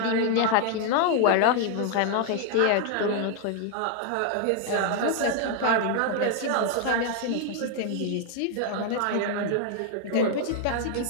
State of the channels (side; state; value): both; different; correlation 0.00